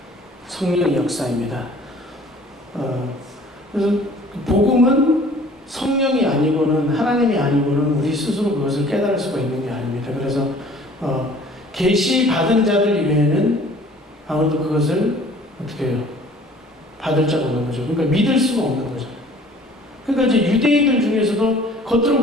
성령의 역사입니다. 그래서 복음은 성령이 아니고는 하나님이 아니고는 우리 스스로 그것을 깨달을 수가 있는 게 아닙니다. 그래서 계시 받은 자들 이외에는 아무도 그것을 어떻게 해요? 받을 자가 없는 거죠. 그러니까 믿을 수가 없는 거죠. 그러니까 이제 유대인들 중에서도 겉으로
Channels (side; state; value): both; normal; correlation 0.51